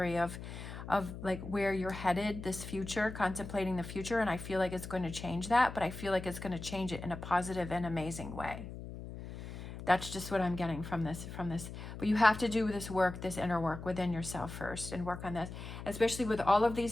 of like where you're headed, this future, contemplating the future, and I feel like it's going to change that, but I feel like it's going to change it in a positive and amazing way. That's just what I'm getting from this. But you have to do this work, this inner work within yourself first, and work on this, especially with all of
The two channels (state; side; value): noise; left; hum, 10 dB below the sound